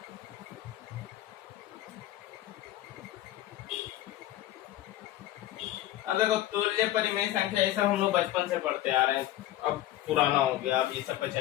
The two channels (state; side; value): quieter; right; 14.2 dB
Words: अब देखो, तुल्य परिमेय संख्या, ये सब हम लोग बचपन से पढ़ते आ रहे हैं, अब पुराना हो गया, अब ये सब पे